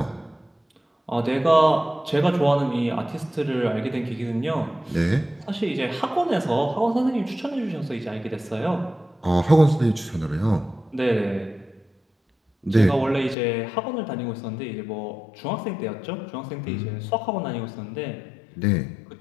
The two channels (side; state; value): right; drops out; at 13.4 s